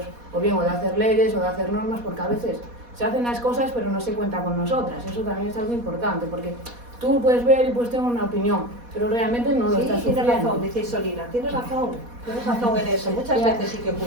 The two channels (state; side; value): late; left; 4.2 ms